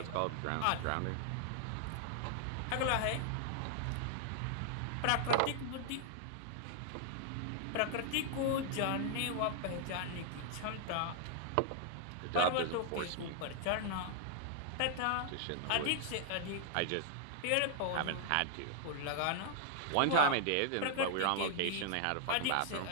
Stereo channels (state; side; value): different; both; correlation 0.00